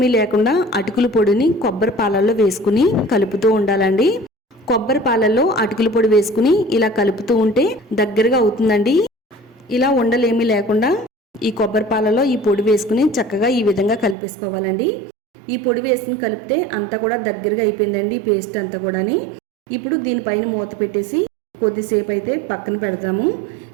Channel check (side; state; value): left; drops out; at 14.2 s